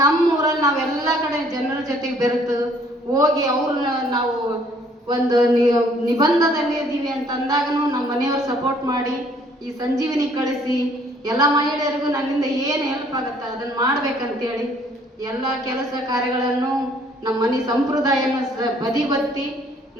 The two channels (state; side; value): normal; both; correlation 0.61